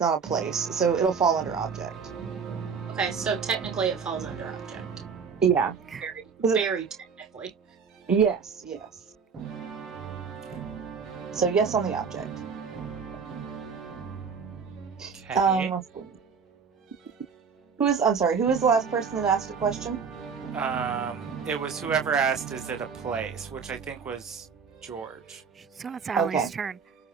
not a place, so it'll fall under object. Okay, so technically it falls under object. Yeah. Very technically. Yes. So yes on the object. Okay. Let's see. Who is the last person that asked a question? It was whoever asked, is it a place? Which I think was George. So it's Allie's Okay. turn.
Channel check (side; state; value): left; quieter; 5.9 dB